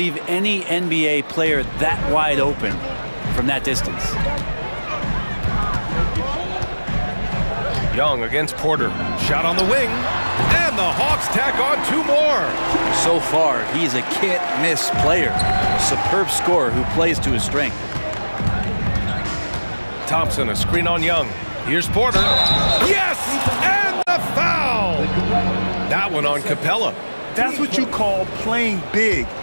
any NBA player that wide open from that distance. Young against Porter. Shot on the wing. And the Hawks tack on 2 more. So far, he's a can't-miss player. A superb scorer who plays to his strength. Thompson, a screen on Young. Here's Porter. Yes! And the foul! That one on Capella. That's what you call playing big.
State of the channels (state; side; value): inverted; both; correlation -1.00